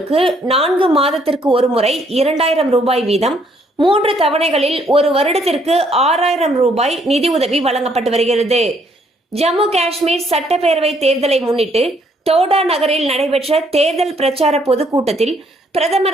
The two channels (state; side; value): normal; both; correlation 0.67